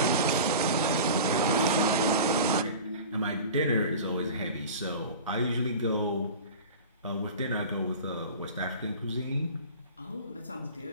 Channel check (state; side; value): inverted; both; correlation -0.36